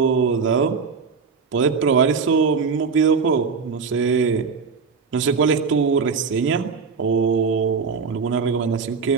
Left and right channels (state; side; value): quieter; left; 5.3 dB